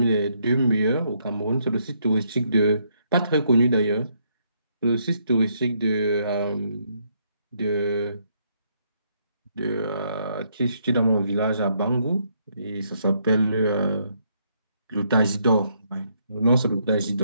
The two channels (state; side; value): inverted; both; correlation -0.73